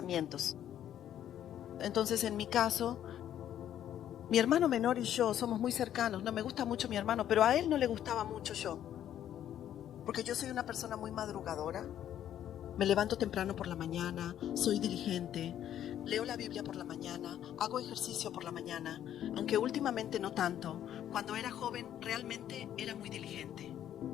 Entonces, en mi caso, mi hermano menor y yo somos muy cercanos. No me gusta mucho mi hermano, pero a él no le gustaba mucho yo. Porque yo soy una persona muy madrugadora. Me levanto temprano por la mañana, soy diligente, leo la Biblia por la mañana, hago ejercicio por la mañana, aunque últimamente no tanto. Cuando era joven realmente era muy diligente.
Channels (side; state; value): right; quieter; 10.8 dB